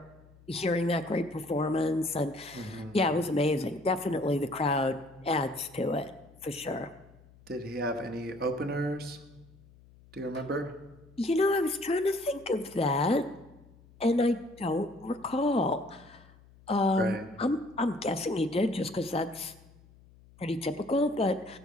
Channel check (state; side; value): noise; left; hum, 25 dB below the sound